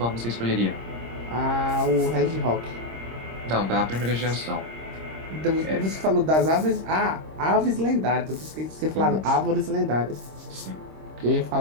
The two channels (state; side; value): late; left; 26 ms